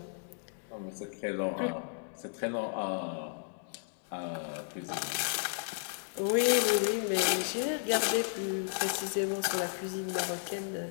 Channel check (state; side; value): silent; right; digital silence